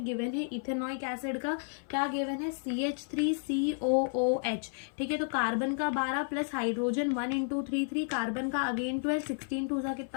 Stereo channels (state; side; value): silent; right; 56 dB below the other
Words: गिवन है इथेनॉइक एसिड का, क्या गिवन है CH3COOH, ठीक है। तो कार्बन का 12 प्लस हाइड्रोजन 1 इंटू 3 कार्बन का अगेन 12, 16 टू सा